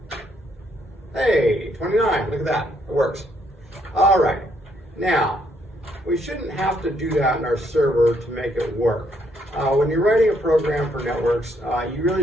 Hey, 29, look at that, it works. All right, now, we shouldn't have to do that in our server to make it work. When you're writing a program for networks, you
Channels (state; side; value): normal; both; correlation 0.72